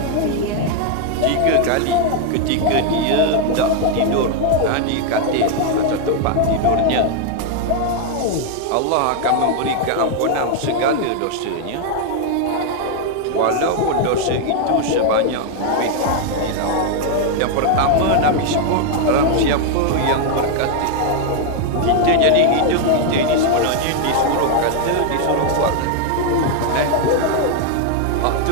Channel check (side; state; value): both; different; correlation 0.00